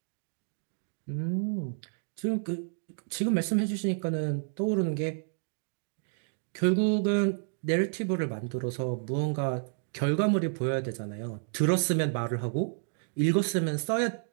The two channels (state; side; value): silent; left; digital silence